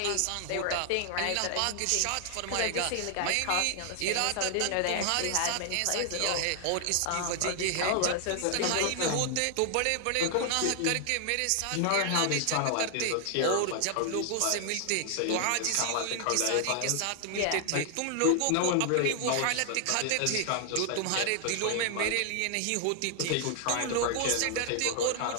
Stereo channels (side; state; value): both; different; correlation 0.00